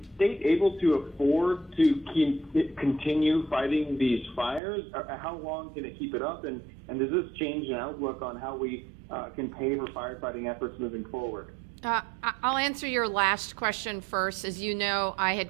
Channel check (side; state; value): left; drops out; at 4.6 s